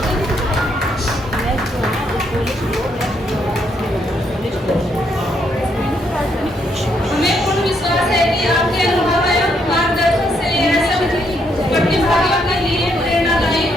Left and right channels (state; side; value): normal; both; correlation 0.74